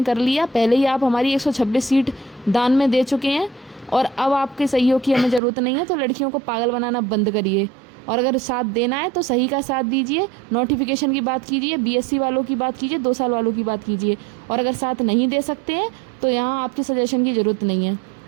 कर लिया। पहले ही आप हमारी 126 सीट दान में दे चुके हैं और अब आपके सहयोग की हमें ज़रूरत नहीं है। तो लड़कियों को पागल बनाना बंद करिए, और अगर साथ देना है तो सही का साथ दीजिए। नोटिफिकेशन की बात कीजिए, बीएससी वालों की बात कीजिए, 2 साल वालों की बात कीजिए। और अगर साथ नहीं दे सकते हैं तो यहाँ आपके सजेशन की ज़रूरत नहीं है।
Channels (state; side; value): drops out; left; at 5.4 s